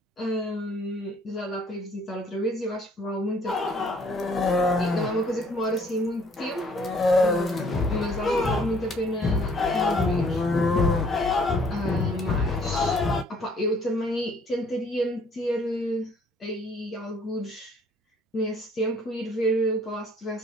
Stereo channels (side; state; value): both; normal; correlation 0.60